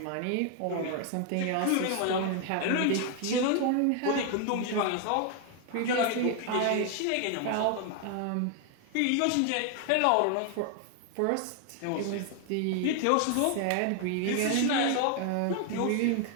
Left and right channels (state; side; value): different; both; correlation 0.00